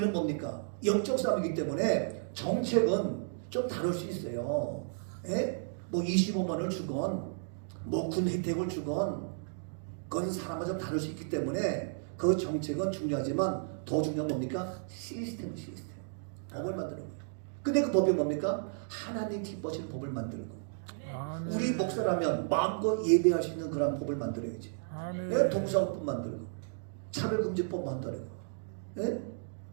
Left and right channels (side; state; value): left; silent; digital silence